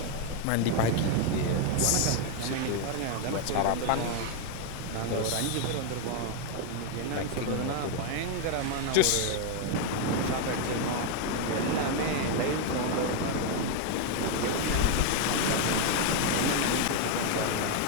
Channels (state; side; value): different; both; correlation 0.01